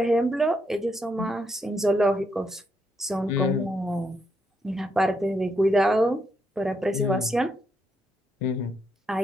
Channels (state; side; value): normal; both; correlation 0.78